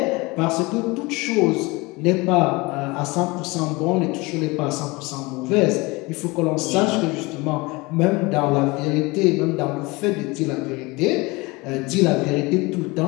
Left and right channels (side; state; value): right; quieter; 24.2 dB